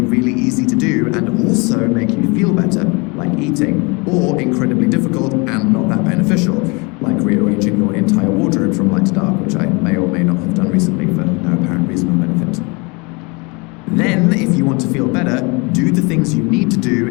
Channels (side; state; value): right; quieter; 28.8 dB